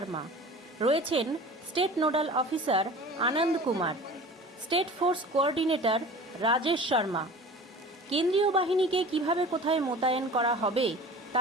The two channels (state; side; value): normal; both; correlation 0.40